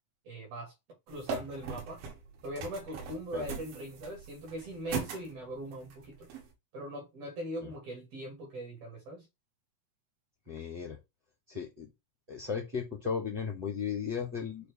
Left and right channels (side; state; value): left; late; 8.0 ms